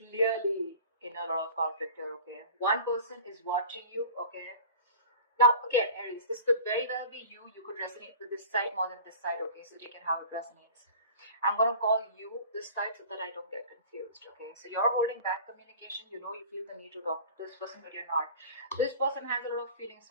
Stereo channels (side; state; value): both; inverted; correlation -0.41